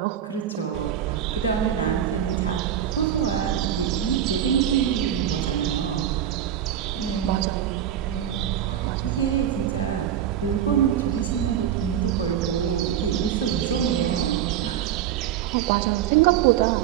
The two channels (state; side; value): quieter; left; 10.1 dB